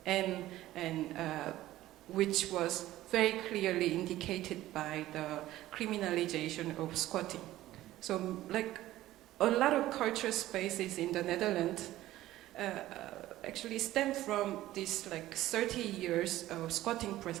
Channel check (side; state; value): left; quieter; 15.2 dB